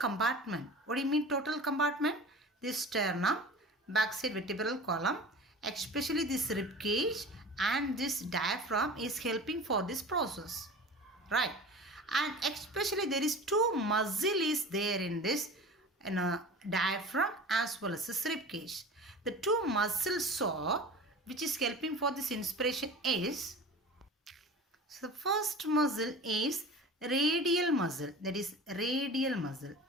what do you mean total compartment? This sternum, backside vertebral column, especially this rib cage and this diaphragm is helping for this process. Right? And especially there is two muscle is there in this diaphragm as well as this rib cage. The two muscle saw which is helping for this inspiration is, so the first muscle is radial muscle, that is radial muscle.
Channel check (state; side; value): normal; both; correlation 0.37